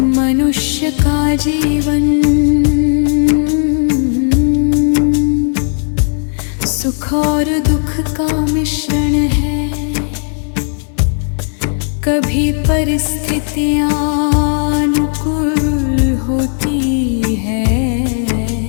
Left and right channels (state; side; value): silent; right; digital silence